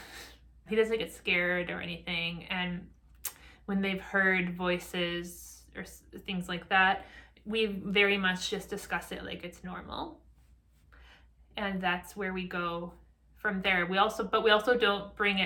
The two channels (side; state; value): both; identical; correlation 1.00